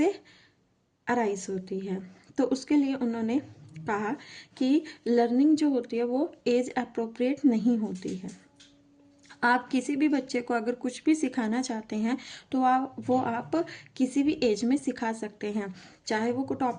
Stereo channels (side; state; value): both; identical; correlation 1.00